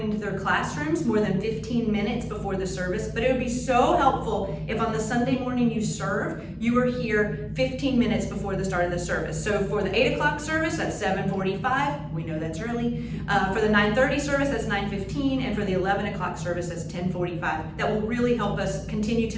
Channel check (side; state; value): both; identical; correlation 1.00